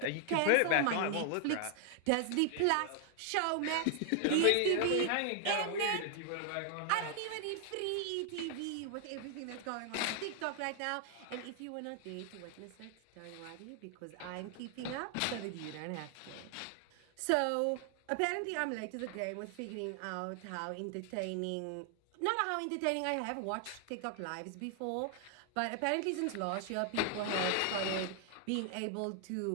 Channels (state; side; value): different; both; correlation 0.00